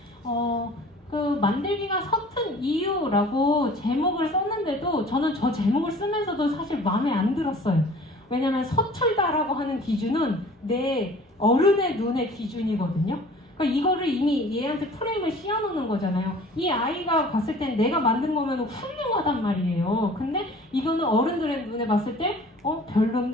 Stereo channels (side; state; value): both; normal; correlation 0.47